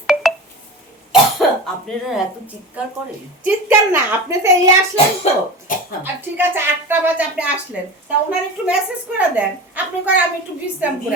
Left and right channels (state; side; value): normal; both; correlation 0.30